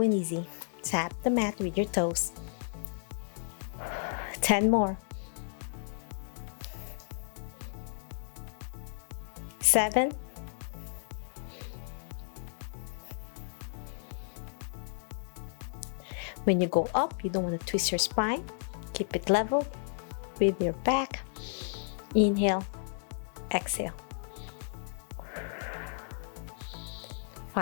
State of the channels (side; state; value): right; silent; 56 dB below the other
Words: and easy. Tap the mat with your toes. 10 more. 7. 'When you go up, you don't want to twist your spine. Keep it level with your back. Inhale, exhale.